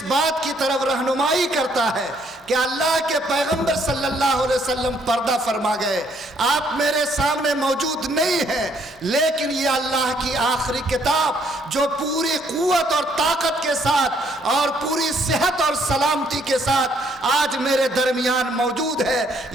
بات کی طرف رہنمائی کرتا ہے کہ اللہ کے پیغمبر صلی اللہ علیہ وسلم پردہ فرما گئے. آپ میرے سامنے موجود نہیں ہیں، لیکن یہ اللہ کی آخری کتاب جو پوری قوت اور طاقت کے ساتھ اور پوری صحت اور سلامتی کے ساتھ آج میرے درمیان موجود ہے،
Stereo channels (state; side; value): normal; both; correlation 0.67